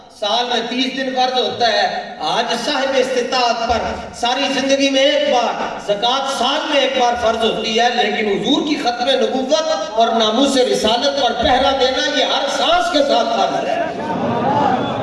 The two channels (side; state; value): both; identical; correlation 1.00